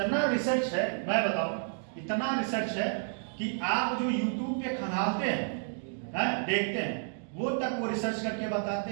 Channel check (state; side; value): silent; left; digital silence